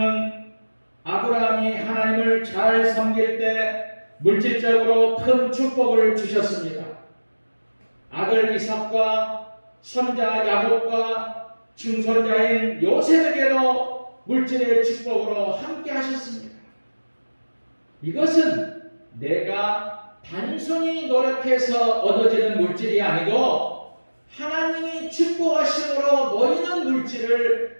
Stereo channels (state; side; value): inverted; both; correlation -1.00